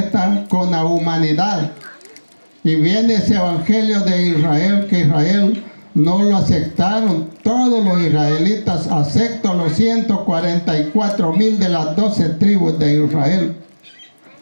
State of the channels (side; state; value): both; inverted; correlation -1.00